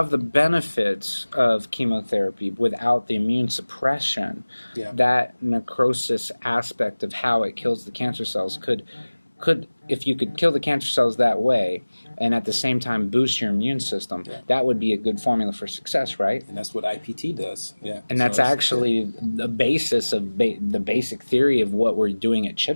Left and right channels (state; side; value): inverted; both; correlation -1.00